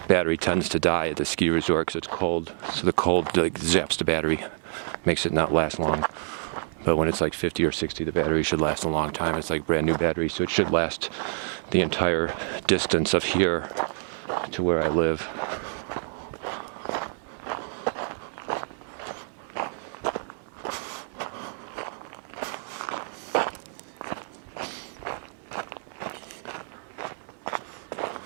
Battery tends to die at the ski resort because it's cold, so the cold like zaps the battery, makes it not last long. But when it's like 50 or 60, the battery should last a long time. It's like brand new battery, so it should last the entire distance of here to where I live.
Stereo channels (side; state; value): left; silent; 60 dB below the other